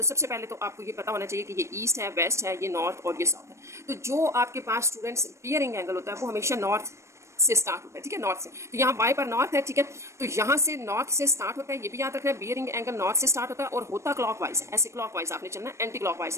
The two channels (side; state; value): left; late; 0.13 ms